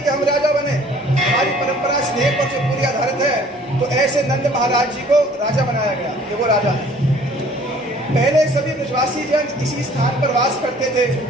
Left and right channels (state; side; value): normal; both; correlation 0.54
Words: कि हम राजा बने, हमारी परंपरा स्नेह पर जो पूरी आधारित है। तो ऐसे नंद महाराज जी को राजा बनाया गया, ये वो राजा है। पहले सभी ब्रजवासी जन इसी स्थान पर वास करते थे।